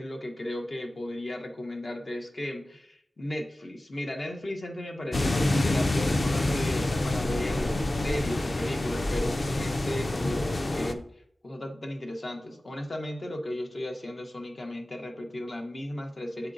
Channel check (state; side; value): normal; both; correlation 0.96